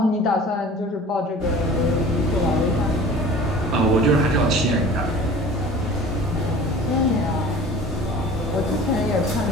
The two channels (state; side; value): normal; both; correlation 0.42